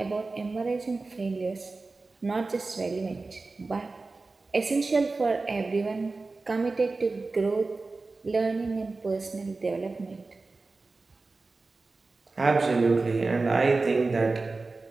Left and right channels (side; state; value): left; quieter; 3.6 dB